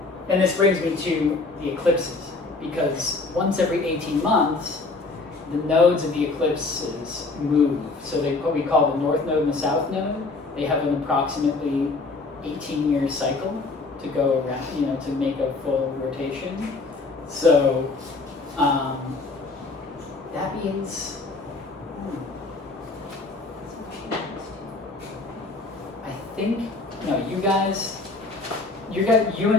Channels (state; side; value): quieter; right; 3.6 dB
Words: this brings me to the eclipses, because once every 18 months, the nodes of the eclipses move. So they what we call the north node and the south node. They have an approximately 18-year cycle to go around, you know, to make a full rotation. So that means I think you